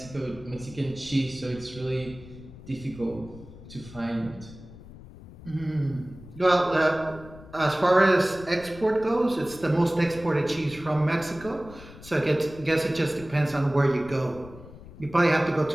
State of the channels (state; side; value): noise; left; rumble, 17 dB below the sound